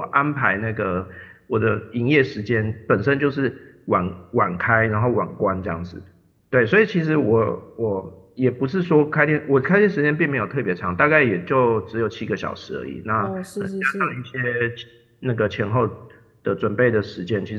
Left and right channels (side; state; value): both; identical; correlation 1.00